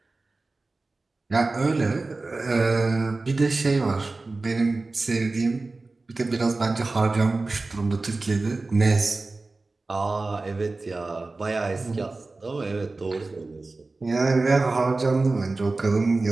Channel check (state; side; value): quieter; left; 3.5 dB